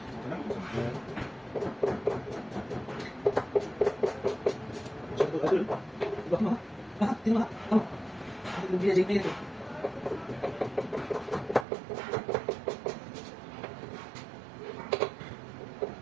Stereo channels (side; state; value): left; drops out; at 11.7 s